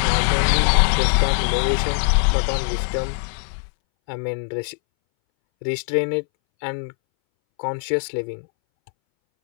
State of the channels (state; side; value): silent; right; 62 dB below the other